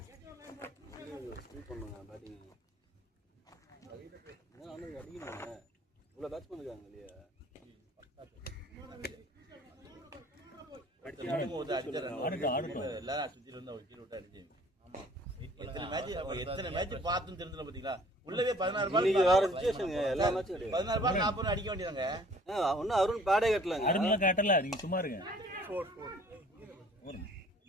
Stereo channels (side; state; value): both; normal; correlation 0.54